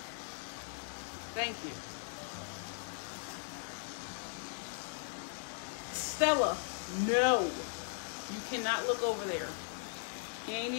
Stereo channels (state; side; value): silent; right; digital silence